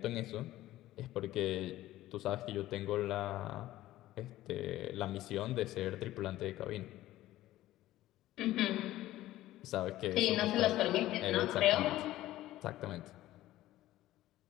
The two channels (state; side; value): quieter; right; 15.3 dB